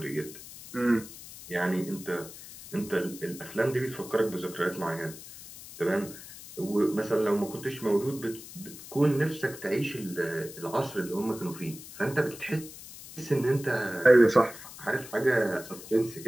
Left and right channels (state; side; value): noise; left; hiss, 15 dB below the sound